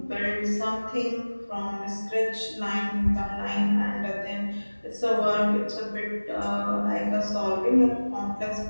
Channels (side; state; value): both; inverted; correlation -1.00